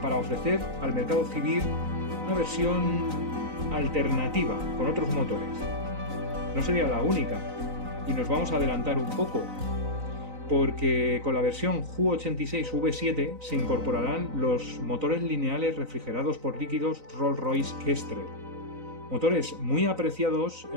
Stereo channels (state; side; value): late; left; 3.9 ms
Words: para ofrecer al mercado civil una versión alternativa con otros motores. No sería la única, y nos vamos a adelantar un poco, porque con la versión Ju-86V7 se incorporarán los motores lineales refrigerados por líquidos Rolls-Royce Kestrel, motores muy apreciados